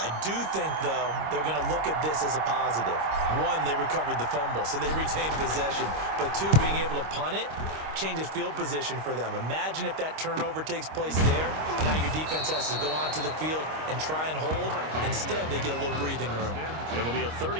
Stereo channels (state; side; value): late; left; 26 ms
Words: do think, though, they're going to look at this as a positive. One, they recovered the fumble, so they retained possession. But two, being able to punt it changes field position for them. Imagine if that turnover takes place there. Now your defense has to go onto the field and try and hold. Instead, they get a little breathing room. It'll be a